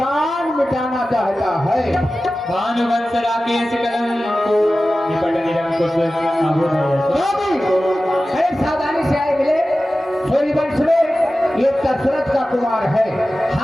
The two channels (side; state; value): both; normal; correlation 0.95